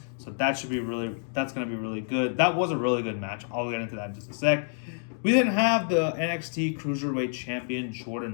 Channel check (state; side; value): silent; right; digital silence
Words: So that's going to be really good. That was a really good match. I'll get into that in just a sec. We then have the NXT Cruiserweight Champion